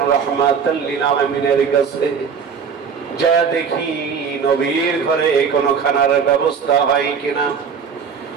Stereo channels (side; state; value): left; quieter; 6.4 dB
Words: রাহমাতাল লিল আলামিনের কাছে। যা দেখি নবীর ঘরে কোনো খানার ব্যবস্থা হয় কিনা।